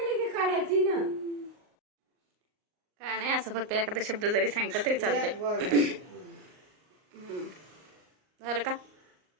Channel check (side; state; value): left; late; 38 ms